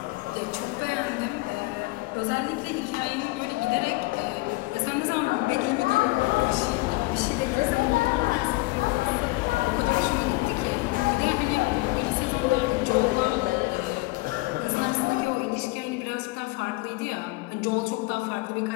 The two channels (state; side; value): quieter; right; 22.5 dB